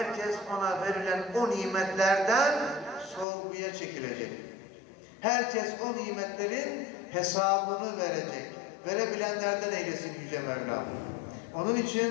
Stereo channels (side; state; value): right; drops out; at 3.2 s